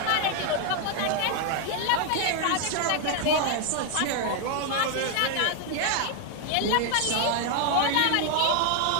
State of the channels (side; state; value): both; different; correlation 0.00